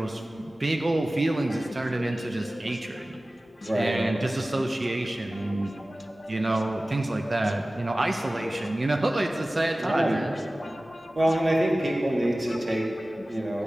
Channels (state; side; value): normal; both; correlation 0.97